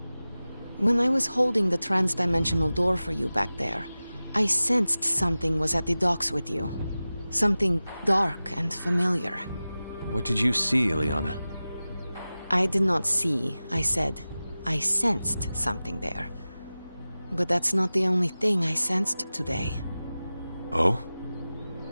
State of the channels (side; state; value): both; inverted; correlation -0.96